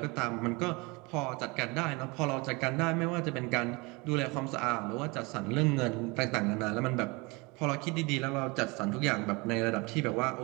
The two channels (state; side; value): quieter; left; 26.5 dB